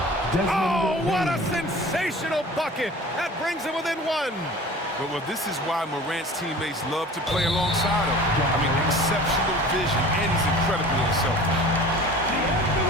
Oh, what a sensational bucket! That brings him within 1. Well, this is why Morant's teammates love to play alongside him. I mean, exceptional vision, and he's incredibly unselfish.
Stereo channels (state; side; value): normal; both; correlation 0.42